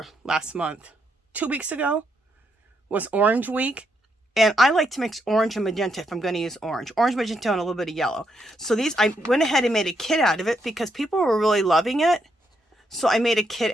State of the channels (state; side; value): normal; both; correlation 0.78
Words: 2 weeks ago was Orange Week, and I like to mix orange and magenta if I'm going to use orange, magenta, and a little bit of yellow. So these, I went ahead and made a kit out of it because people were really loving it. So I made a